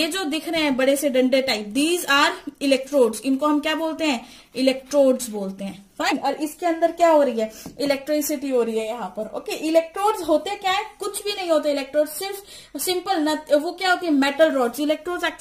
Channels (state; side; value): identical; both; correlation 1.00